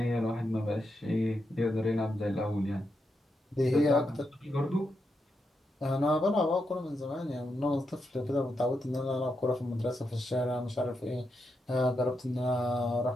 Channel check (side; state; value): both; normal; correlation 0.84